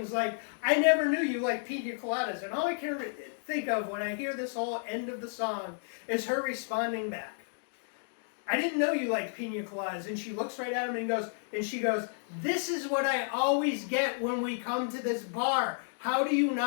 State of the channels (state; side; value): silent; right; digital silence